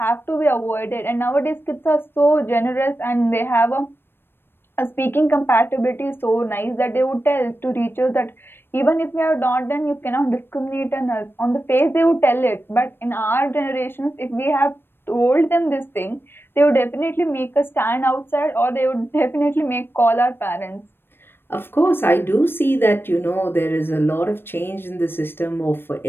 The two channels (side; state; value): right; late; 0.10 ms